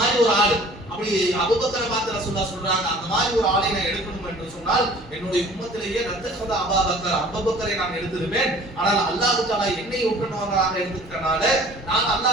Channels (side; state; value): both; normal; correlation 0.49